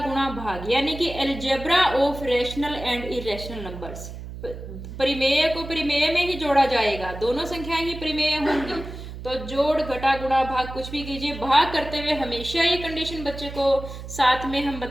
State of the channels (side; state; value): right; noise; hum, 11 dB below the sound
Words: गुणा भाग यानी कि algebra of rational and irrational numbers, परिमेय को परिमेय में ही जोड़ा जाएगा, दोनों संख्याएं ही परिमेय होंगी। तो जोड़ घटा गुणा भाग कुछ भी कीजिए, भाग करते हुए हमेशा ये कंडीशन बच्चे को साथ में हम